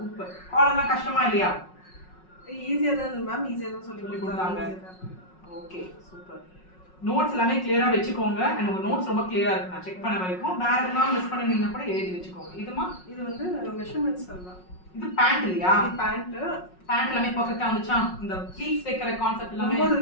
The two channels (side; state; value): right; late; 5.4 ms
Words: காலர்லாம் கஷ்டமா இல்லையா? ஈஸியா தான் மேம். ஈஸியா தான் சொல்லி கொடுத்தாங்க. Okay, super. நோட்ஸ் எல்லாமே கிளியரா வெச்சுக்கோங்க. and உங்க நோட்ஸ் ரொம்ப கிளியரா இருக்கு. நான் செக் பண்ண வரைக்கும் வேற எதுனா மிஸ் பண்ணிருந்தீங்கன்னா கூட எழுதி வெச்சுக்கோங்க. இதுமா இது வந்து மெஷர்மென்ட்ஸ் எல்லாம். இது பேண்ட் இல்லையா? பேண்ட் எல்லாமே பெர்ஃபெக்ட்டா வந்துச்சா? இந்த ப்ளீட்ஸ் வைக்கிற கான்செப்ட் எல்லாமே